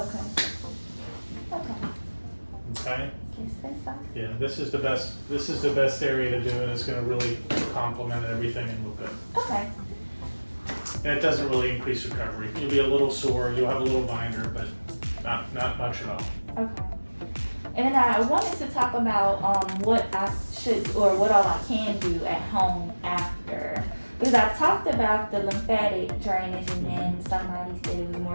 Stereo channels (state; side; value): inverted; both; correlation -1.00